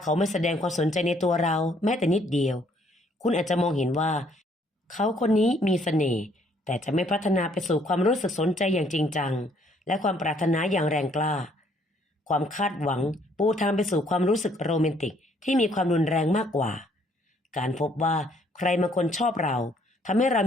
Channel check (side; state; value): both; normal; correlation 0.65